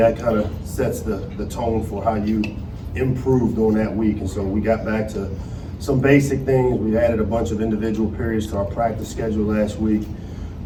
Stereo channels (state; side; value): identical; both; correlation 1.00